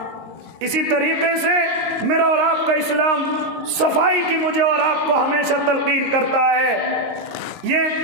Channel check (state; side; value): late; left; 22 ms